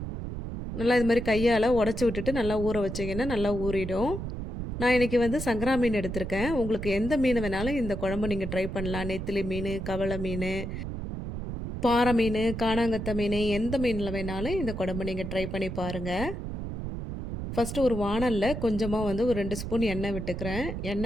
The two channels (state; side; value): noise; right; rumble, 6 dB below the sound